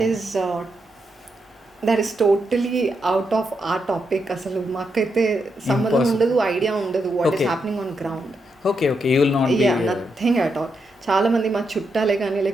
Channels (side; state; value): both; normal; correlation 0.83